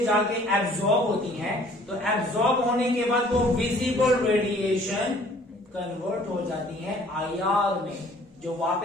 जाके एब्जॉर्ब होती हैं तो एब्जॉर्ब होने के बाद वो विजिबल रेडिएशन कन्वर्ट हो जाती हैं आईआर में, जो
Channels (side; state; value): both; normal; correlation 0.55